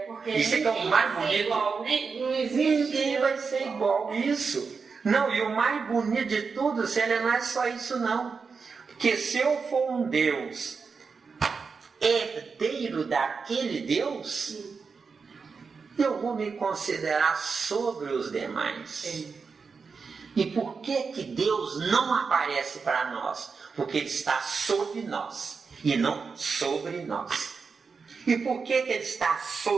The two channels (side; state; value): left; quieter; 5.1 dB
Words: porque Isso é que é o mais bonito. igual, não existe. Ninguém vai ser igual. Isso. Não, e o mais bonito de tudo, não é só isso não. Porque se eu for um Deus herdeiro daquele Deus, eu vou me considerar sobre os demais. E por que Deus não aparece para nós? Porque Ele está sobre nós e não sobre nós. E por que Ele está